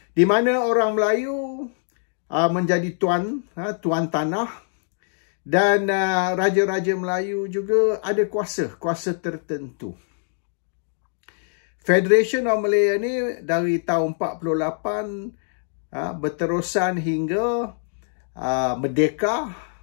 Di mana orang Melayu menjadi tuan tanah dan raja-raja Melayu juga ada kuasa tertentu. Federation of Malaya ni dari tahun 48 berterusan hingga merdeka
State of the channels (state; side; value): silent; right; digital silence